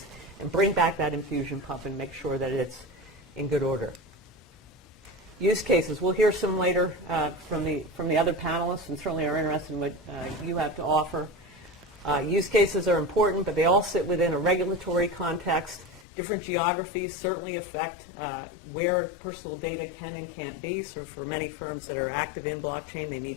and bring back that infusion pump and make sure that it's in good order? Use cases. We'll hear some later from the other panelists, and certainly are interested in what you have to offer. Use cases are important, but they all sit within a regulatory context. Different geographies certainly affect where personal data can and can't be. So for many firms that are active in blockchain, they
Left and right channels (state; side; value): drops out; right; at 16.1 s